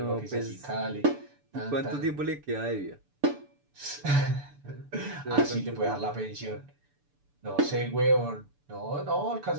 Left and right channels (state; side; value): late; left; 6.9 ms